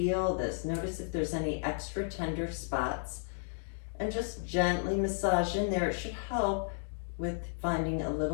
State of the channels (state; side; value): silent; right; digital silence